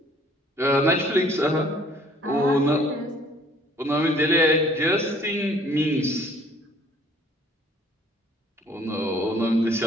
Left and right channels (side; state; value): both; normal; correlation 0.57